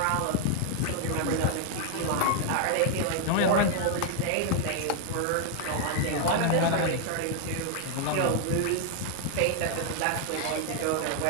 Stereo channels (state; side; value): different; both; correlation 0.00